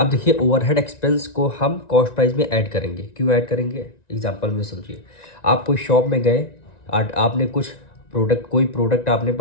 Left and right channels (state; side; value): late; right; 1.9 ms